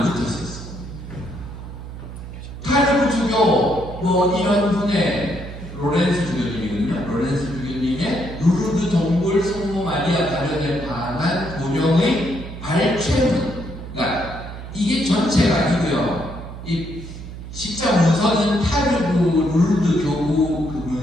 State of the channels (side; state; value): right; noise; hum, 11 dB below the sound